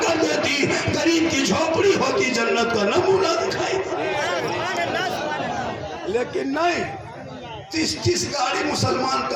देती। गरीब की झोपड़ी होती, जन्नत का नमूना दिखाई। लेकिन नहीं, 30-30 गाड़ी मुसलमान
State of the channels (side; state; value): both; identical; correlation 1.00